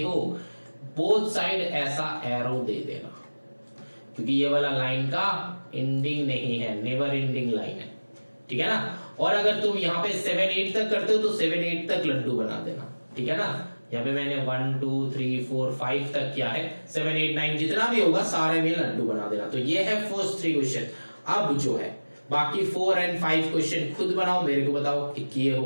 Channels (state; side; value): inverted; both; correlation -1.00